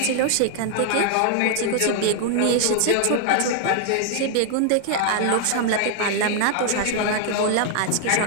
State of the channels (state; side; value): different; both; correlation -0.01